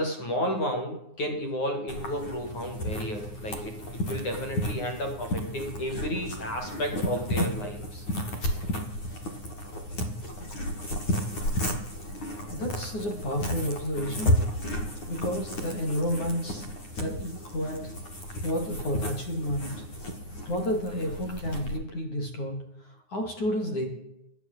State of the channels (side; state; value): right; late; 9.6 ms